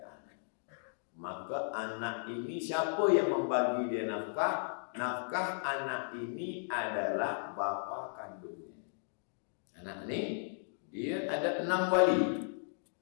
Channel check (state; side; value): silent; right; digital silence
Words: anak. Maka anak ini siapa yang membagi dia nafkah? Nafkah anak ini adalah bapa kandungnya. Anak ini dia ada 6 wali.